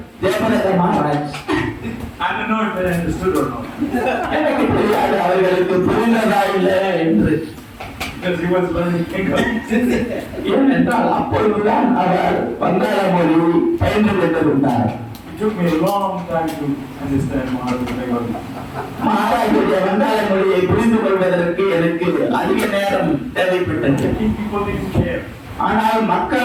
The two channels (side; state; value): both; identical; correlation 1.00